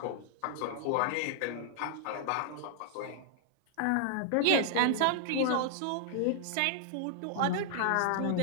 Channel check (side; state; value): both; different; correlation 0.00